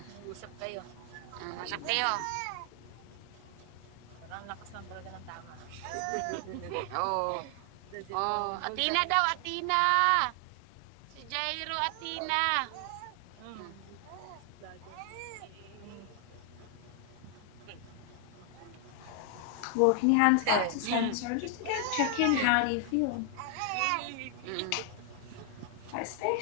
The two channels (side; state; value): both; different; correlation 0.00